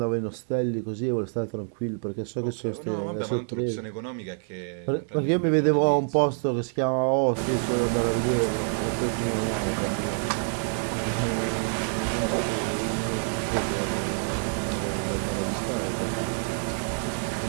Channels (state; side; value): silent; left; 60 dB below the other